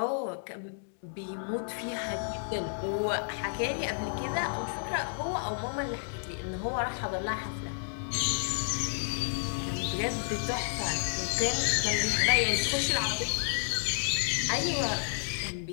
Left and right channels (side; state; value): right; silent; digital silence